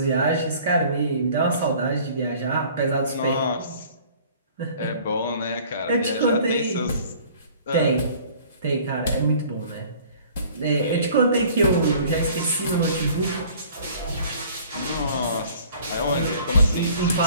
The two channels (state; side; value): inverted; both; correlation -0.52